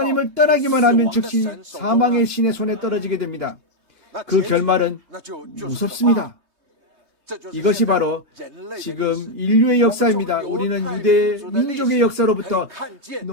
떠나기만 하면 즉시 사망의 신의 손에 떨어지게 됩니다. 그 결말은 무섭습니다. 이것이 바로 지금 인류의 역사입니다. 우리는 유대 민족의 역사로부터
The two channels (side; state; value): left; late; 3.2 ms